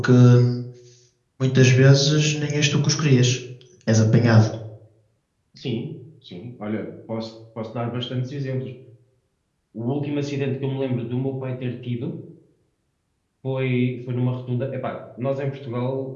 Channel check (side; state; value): both; identical; correlation 1.00